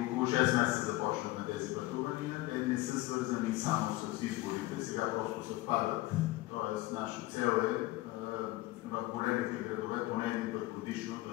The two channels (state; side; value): quieter; right; 18.4 dB